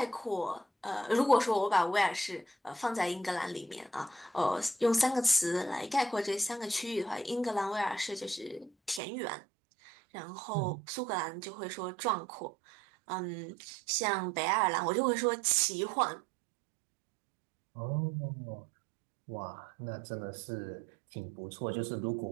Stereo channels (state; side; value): drops out; left; at 9.0 s